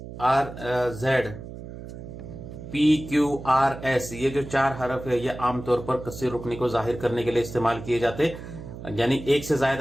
rz, pqrs, ये जो 4 हरफ है ये आमतौर पर कसीर रुकनी को जाहिर करने के लिए इस्तेमाल किए जाते, यानी एक से जायद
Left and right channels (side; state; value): right; noise; hum, 12 dB below the sound